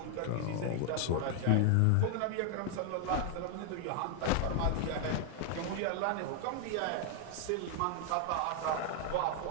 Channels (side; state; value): both; different; correlation 0.00